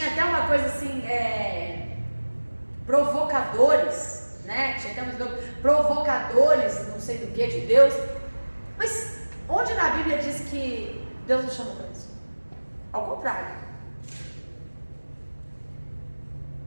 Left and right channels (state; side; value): inverted; both; correlation -1.00